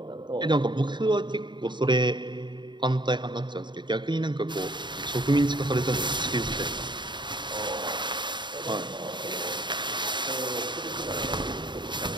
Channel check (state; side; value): late; left; 0.22 ms